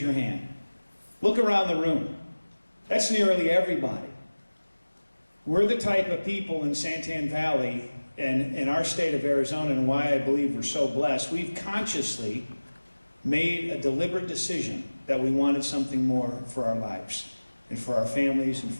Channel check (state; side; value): inverted; both; correlation -1.00